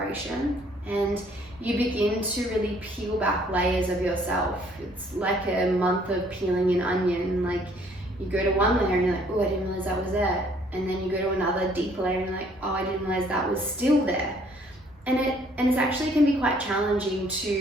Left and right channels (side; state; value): both; normal; correlation 0.62